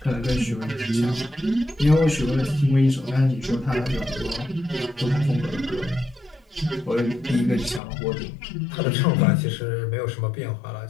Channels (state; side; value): drops out; right; at 7.8 s